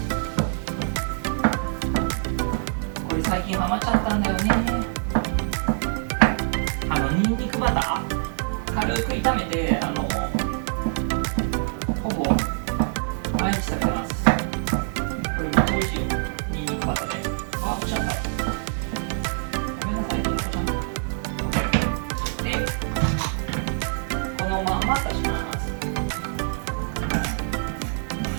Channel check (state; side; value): silent; left; digital silence